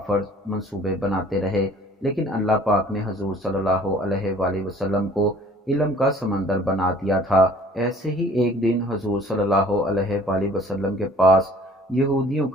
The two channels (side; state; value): both; normal; correlation 0.52